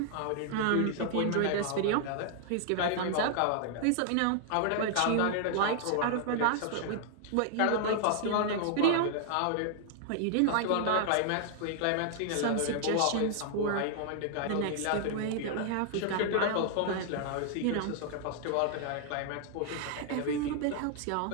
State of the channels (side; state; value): both; different; correlation -0.01